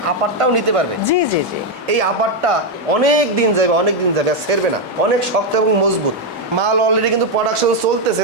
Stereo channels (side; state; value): both; normal; correlation 0.03